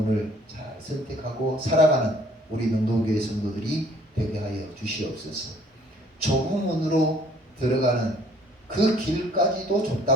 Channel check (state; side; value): normal; both; correlation 0.58